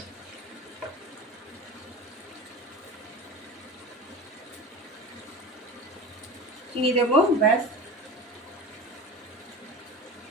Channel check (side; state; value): both; normal; correlation 0.32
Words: চিনি দেবো, ব্যাস।